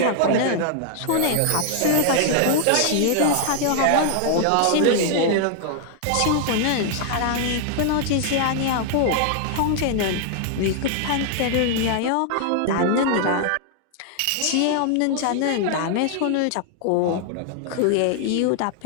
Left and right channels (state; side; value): different; both; correlation -0.01